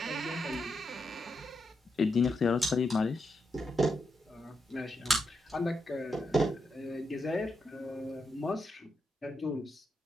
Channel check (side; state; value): both; normal; correlation 0.83